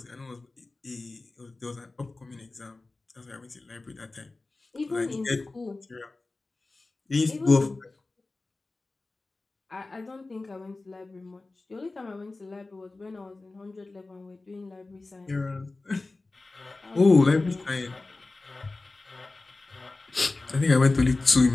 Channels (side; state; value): right; quieter; 3.3 dB